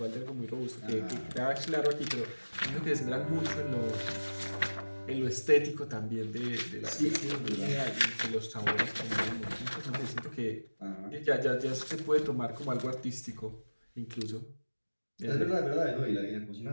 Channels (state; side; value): inverted; both; correlation -1.00